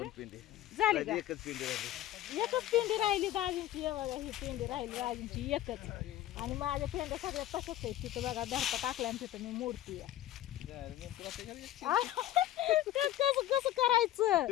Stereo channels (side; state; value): right; quieter; 13.7 dB